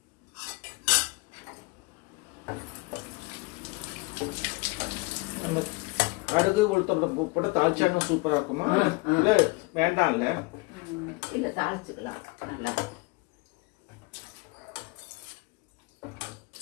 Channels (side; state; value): right; quieter; 25.9 dB